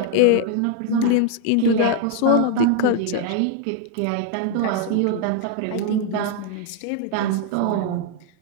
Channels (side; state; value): both; different; correlation 0.00